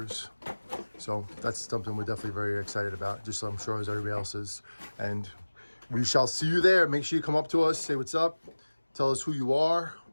So that's something we're definitely very excited about, just I'm sure as everybody else is. And we shall see you there. Make sure you come up to us, say what's up, tell us who you are.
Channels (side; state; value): both; inverted; correlation -1.00